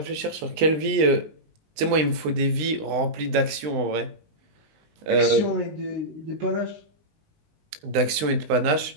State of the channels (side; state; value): left; late; 20 ms